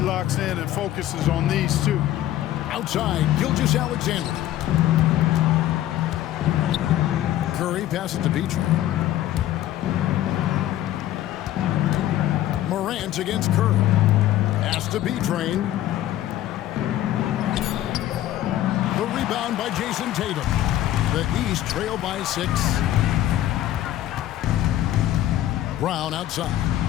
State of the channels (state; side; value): quieter; right; 13.3 dB